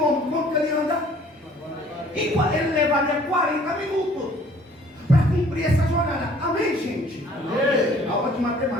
quanto ele anda? Ele levaria 40 minutos para cumprir essa jornada. Amém, gente? Amém. Aula de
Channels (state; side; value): normal; both; correlation 0.55